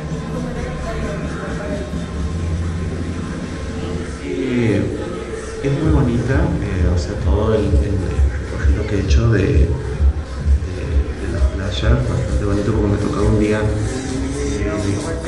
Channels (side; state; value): both; identical; correlation 1.00